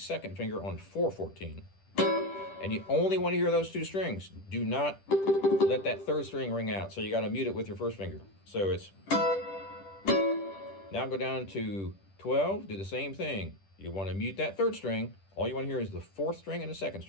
finger on 4-14. And you only want to hear those 2 strings. Do not let that 3rd string ring out. So you got to mute it with your 1st finger. So it's, now go down to 12, do the same thing. You want to mute that 3rd string. All you want to hear is the 4th string and the 2nd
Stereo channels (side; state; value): right; late; 10 ms